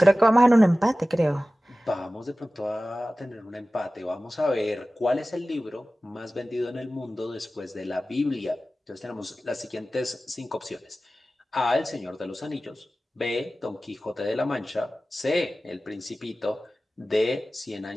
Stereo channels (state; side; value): normal; both; correlation 0.96